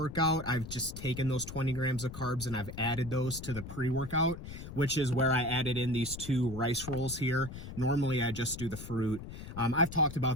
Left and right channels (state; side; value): noise; left; rumble, 11 dB below the sound